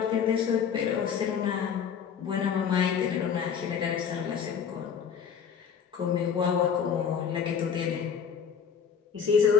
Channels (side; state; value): right; quieter; 7.3 dB